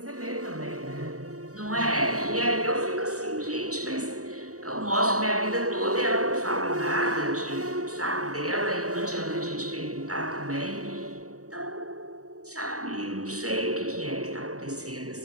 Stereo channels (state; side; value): late; left; 0.66 ms